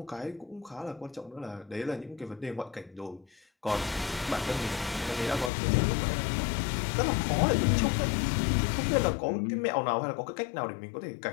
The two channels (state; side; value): drops out; right; at 5.5 s